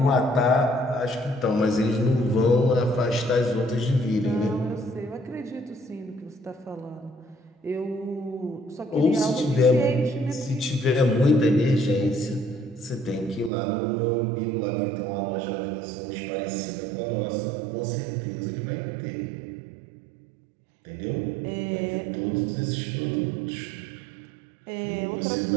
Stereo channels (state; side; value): drops out; left; at 13.5 s